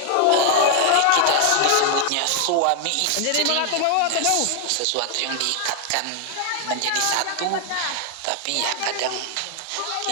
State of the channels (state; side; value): different; both; correlation 0.00